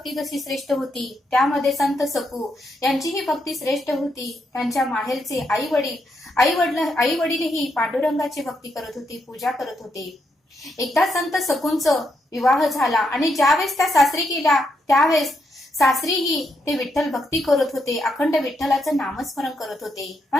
जशी श्रेष्ठ होती त्यामध्ये संत सकू यांचीही भक्ती श्रेष्ठ होती. त्यांच्या माहेरचे आई वडीलही पांडुरंगाची भक्ती करत होती, पूजा करत होते. एकदा संत सकूंचा विवाह झाला आणि ज्यावेळेस त्या सासरी गेल्या त्यावेळेस सासरीही ते विठ्ठल भक्ती करत होते, अखंड विठ्ठलाचं नामस्मरण करत होते.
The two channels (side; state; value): both; normal; correlation 0.79